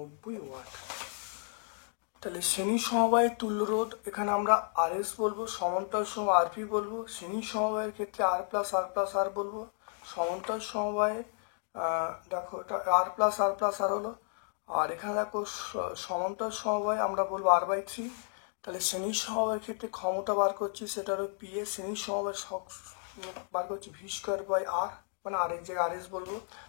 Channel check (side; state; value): right; silent; 56 dB below the other